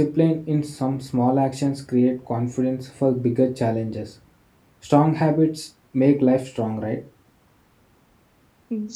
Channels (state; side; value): identical; both; correlation 1.00